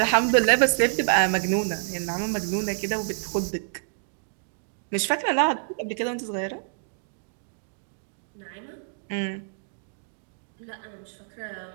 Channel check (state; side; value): silent; left; digital silence